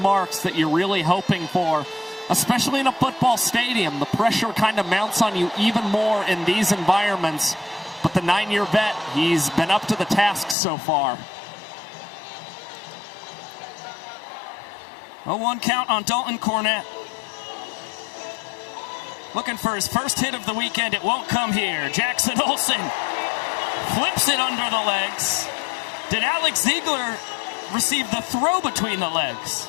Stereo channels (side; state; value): right; drops out; at 10.6 s